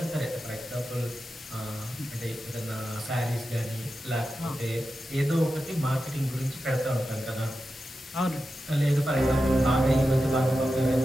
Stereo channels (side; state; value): both; normal; correlation 0.91